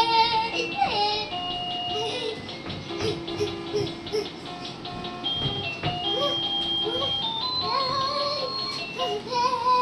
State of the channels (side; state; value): both; identical; correlation 1.00